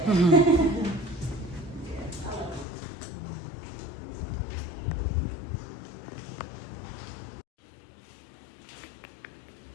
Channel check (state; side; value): drops out; right; at 2.7 s